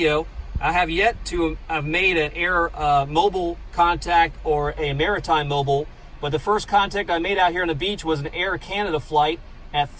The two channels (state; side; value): identical; both; correlation 1.00